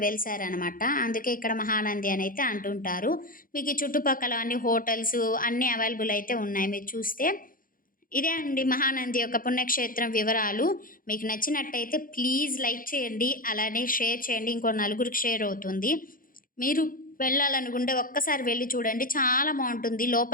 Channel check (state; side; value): late; right; 0.40 ms